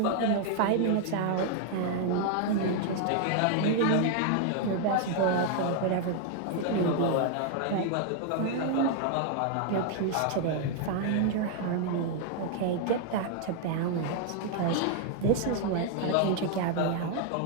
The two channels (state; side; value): different; both; correlation 0.00